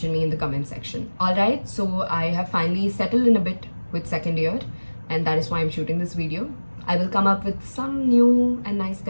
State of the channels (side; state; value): both; inverted; correlation -1.00